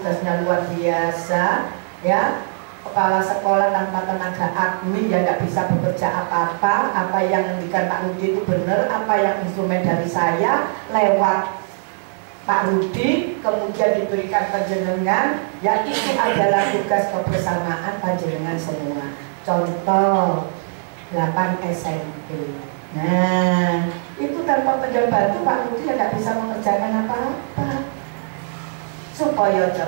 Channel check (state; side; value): silent; left; digital silence